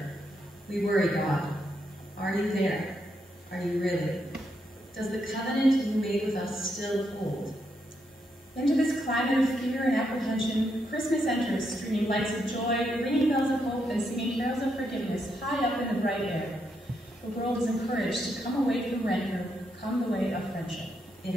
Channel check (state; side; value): normal; both; correlation 0.80